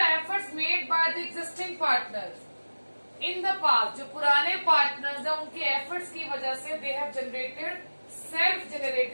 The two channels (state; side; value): inverted; both; correlation -1.00